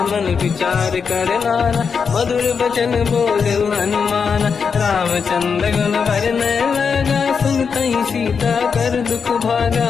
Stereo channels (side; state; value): right; quieter; 6.0 dB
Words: मन विचार कर नाना, मधुर बचन बोले हनुमान, रामचंद्र गुण वरनय लगा, सुनतहि सीता कर दुख भागा,